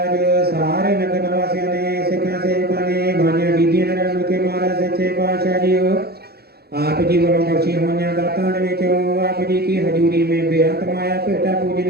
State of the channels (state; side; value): late; left; 0.46 ms